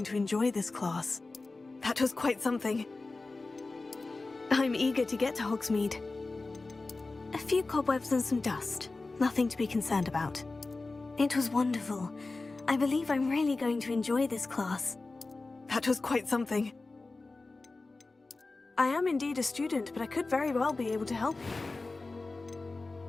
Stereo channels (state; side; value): quieter; right; 3.5 dB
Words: to enjoy this class. That was quite something. I'm eager to get to Hogsmeade. A few cobwebs and some dust. Nothing to be concerned about. It was wonderful. I believe I'm really going to enjoy this class. That was quite something. I am indeed a student, but I could very well be able to help you.